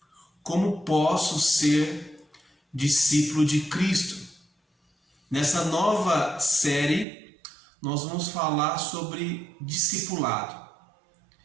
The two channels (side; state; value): left; drops out; at 7.1 s